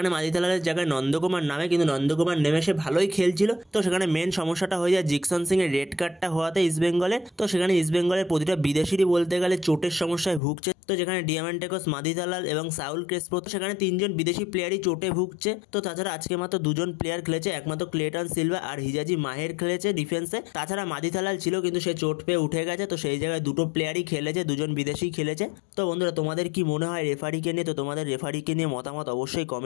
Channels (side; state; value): right; drops out; at 10.4 s